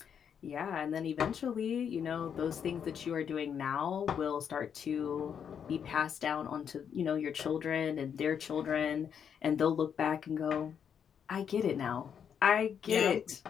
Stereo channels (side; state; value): right; quieter; 7.8 dB